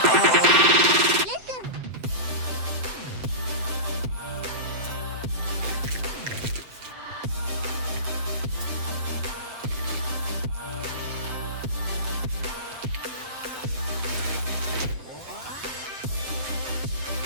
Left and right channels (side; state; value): left; late; 7.8 ms